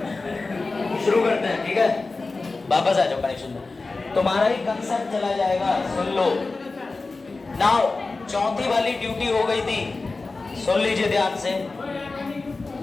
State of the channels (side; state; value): right; quieter; 3.7 dB